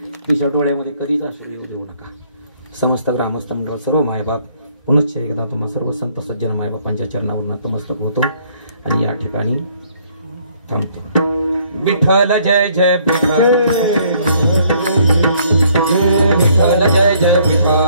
तिच्या डोळ्यामध्ये कधीच अश्रू येऊ देऊ नका. समस्त ग्रामस्थ मंडळ सर्व मायबाप पुनश्च एकदा तुम्हा सर्व संत सज्जन मायबापांच्या चरणावर नतमस्तक होतो आणि या ठिकाणी थांबतो. विठ्ठल जय जय विठ्ठल, विठ्ठल जय जय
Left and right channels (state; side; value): inverted; both; correlation -0.64